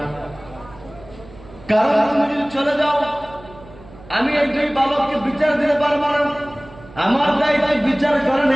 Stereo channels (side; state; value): right; noise; hum, 20 dB below the sound